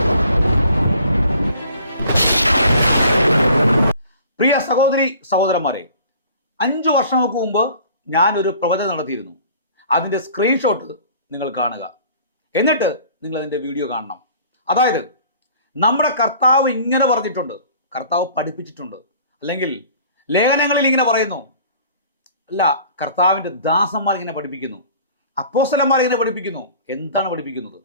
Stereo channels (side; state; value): both; inverted; correlation -0.50